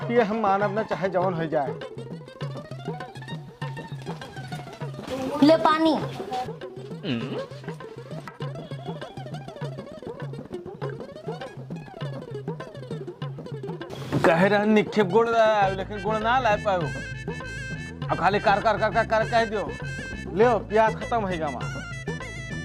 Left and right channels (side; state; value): both; identical; correlation 1.00